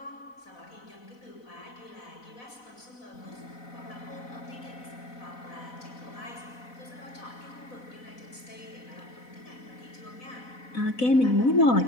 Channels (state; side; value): late; right; 4.0 ms